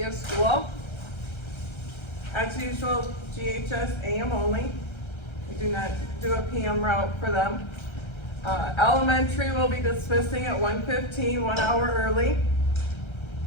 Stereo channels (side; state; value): right; late; 1.3 ms